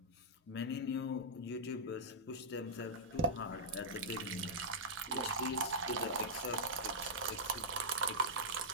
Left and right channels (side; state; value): both; normal; correlation -0.09